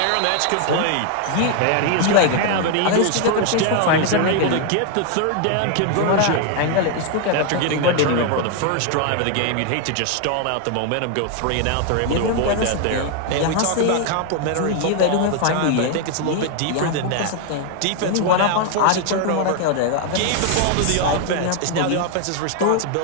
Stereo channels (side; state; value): both; different; correlation 0.00